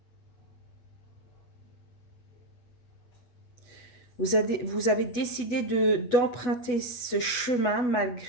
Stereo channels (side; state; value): right; late; 8.1 ms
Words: Vous avez décidé d'emprunter ce chemin